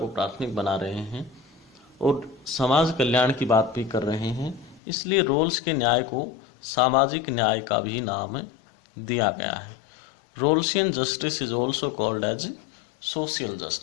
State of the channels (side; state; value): right; drops out; at 4.8 s